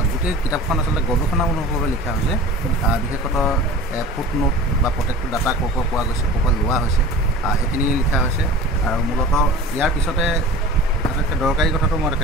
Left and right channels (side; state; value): both; normal; correlation 0.38